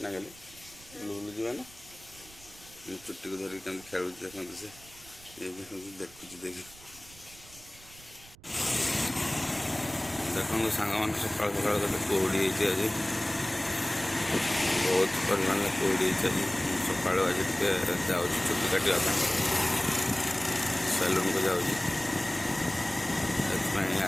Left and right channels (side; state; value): right; noise; rumble, 22 dB below the sound